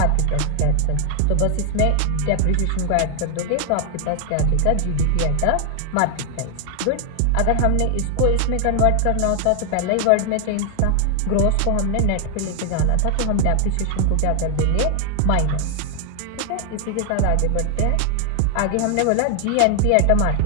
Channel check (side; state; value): both; different; correlation 0.00